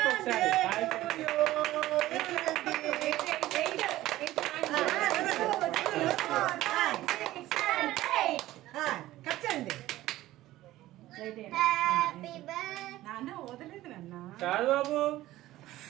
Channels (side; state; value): left; quieter; 15.8 dB